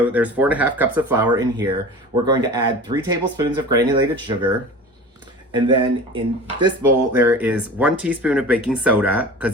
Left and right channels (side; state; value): both; normal; correlation 0.36